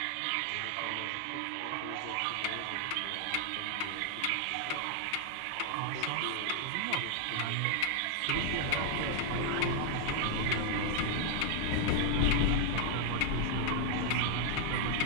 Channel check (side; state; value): both; different; correlation 0.00